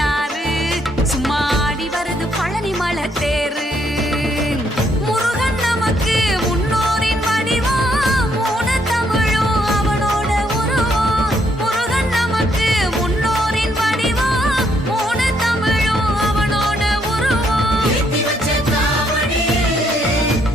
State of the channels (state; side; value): normal; both; correlation 0.72